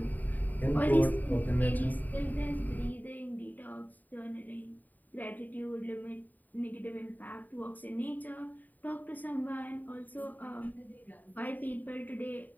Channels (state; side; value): late; right; 0.085 ms